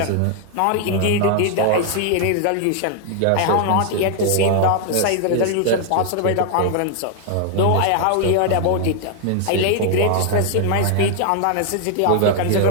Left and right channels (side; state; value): both; different; correlation 0.00